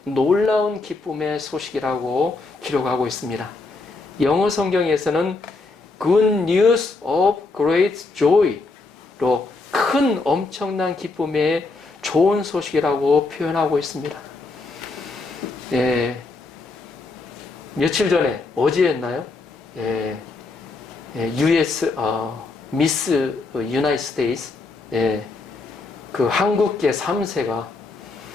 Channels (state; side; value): quieter; right; 3.6 dB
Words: 놀라운 기쁨의 소식이라고 기록하고 있습니다. 영어 성경에서는 Good News of Great Joy로 큰 엄청난 기쁨의 좋은 소식이라고 표현하고 있습니다. 며칠 전에 어제였나요? US 미스 유나이티드 스테이츠 그 한국계 3세가